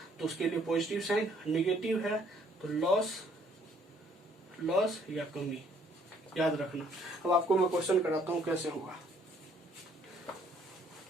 तो उसके लिए पॉजिटिव साइन, नेगेटिव है तो लॉस या कमी, याद रखना। अब आपको मैं क्वेश्चन कराता हूँ कैसे होगा।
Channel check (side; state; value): both; normal; correlation 0.63